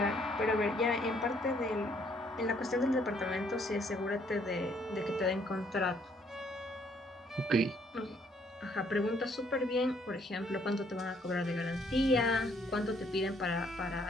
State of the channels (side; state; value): both; normal; correlation 0.66